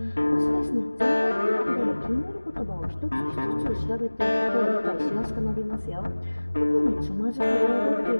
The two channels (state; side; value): inverted; both; correlation -1.00